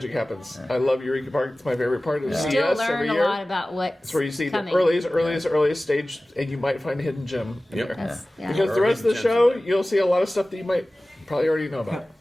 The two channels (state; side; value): normal; both; correlation 0.97